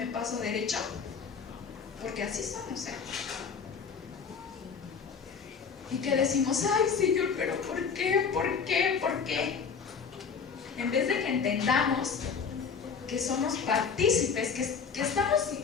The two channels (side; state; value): right; quieter; 6.0 dB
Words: paso derecho. Porque así somos, ¿eh? Y que decimos, ay, Señor, pero ¿por qué? ¿Por qué? ¿Por qué? En vez de que entendamos que somos partícipes, que estamos